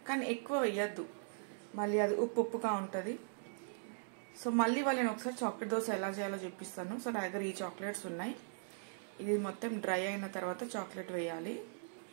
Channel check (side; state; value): left; silent; digital silence